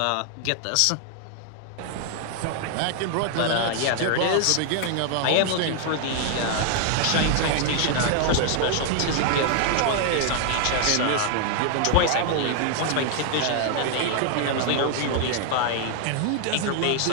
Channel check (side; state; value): both; different; correlation 0.00